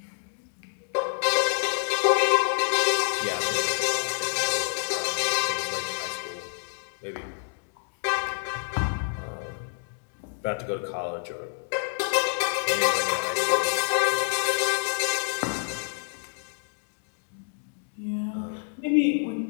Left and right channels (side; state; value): right; silent; digital silence